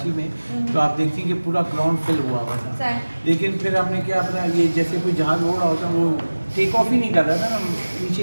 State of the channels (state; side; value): inverted; both; correlation -1.00